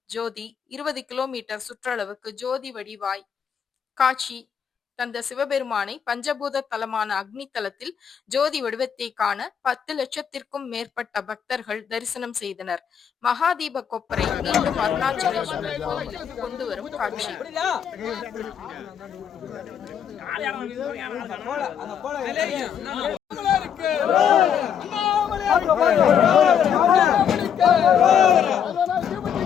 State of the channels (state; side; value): quieter; right; 8.2 dB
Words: ஜோதி 20 கிலோமீட்டர் சுற்றளவுக்கு ஜோதி வடிவாய் காட்சி தந்த சிவபெருமானை பஞ்சபூத தலமான அக்னி தலத்தில் ஜோதி வடிவத்தை காண 10 லட்சத்திற்கும் மேற்பட்ட பக்தர்கள் தரிசனம் செய்தனர். மகாதீப கொப்பரை மீண்டும் அருணாச்சலேஸ்வரர் கோவிலுக்கு கொண்டு வரும் காட்சி.